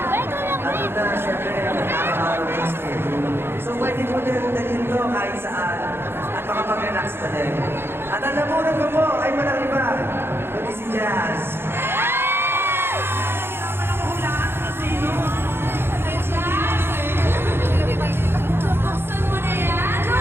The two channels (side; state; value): left; late; 0.11 ms